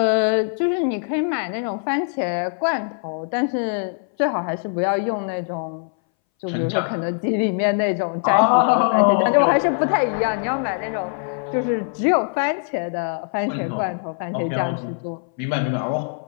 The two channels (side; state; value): right; silent; 61 dB below the other